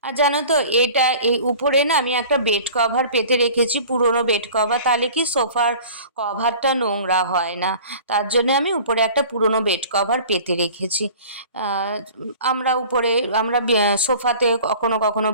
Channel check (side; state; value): both; inverted; correlation -0.43